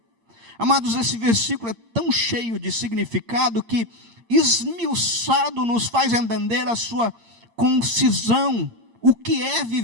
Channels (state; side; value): late; left; 8.7 ms